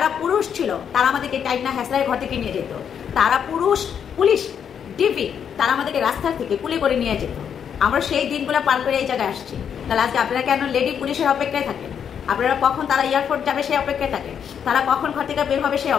পুরুষ ছিল তারা আমাদেরকে টাইনা হ্যাসলারের ঘর থেকে নিয়ে যেত। তারা পুরুষ পুলিশ ডিপি তারা আমাদেরকে রাস্তার থেকে কুলে করে নিয়ে যেত। আমরা সেই দিনগুলো পার করে এই জায়গায় আসছি। তাহলে আজকে আপনারা কেন লেডি পুলিশের অপেক্ষায় থাকেন? আপনারা কখন তারা এয়ারপোর্ট যাবে সেই অপেক্ষায় থাকেন, তারা কখন ঘর থেকে বের হবে সেই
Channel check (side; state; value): right; quieter; 8.0 dB